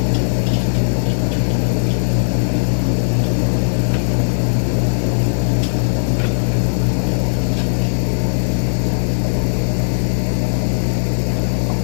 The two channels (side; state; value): right; silent; digital silence